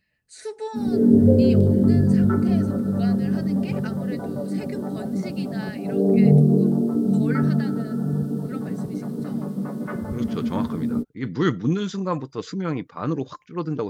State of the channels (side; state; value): both; identical; correlation 1.00